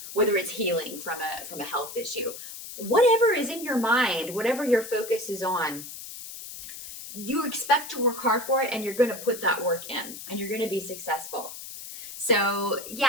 whether it's healing from a health issue, whatever is in your mind, whatever your focus is on, you expect to work hard for it, and you're going to put that work in, and you're going to be successful. So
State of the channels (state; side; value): noise; left; hiss, 11 dB below the sound